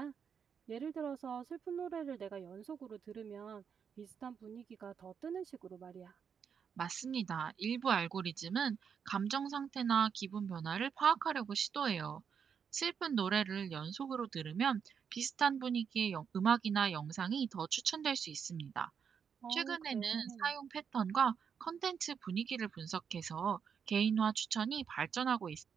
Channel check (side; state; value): left; quieter; 7.0 dB